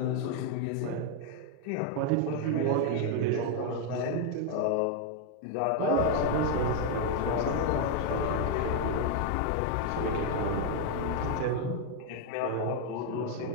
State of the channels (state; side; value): different; both; correlation 0.01